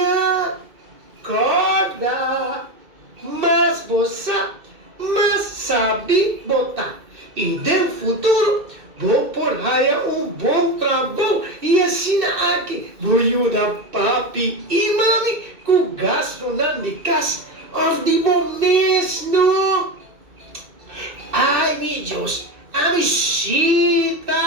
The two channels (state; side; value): late; left; 2.6 ms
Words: Corda, mas você, sabe botar. E no futuro, vou por aí bom trabalho e assim aqui vou ajudar papi e mami com gasto na casa de mês, não? Ai, meu Deus, a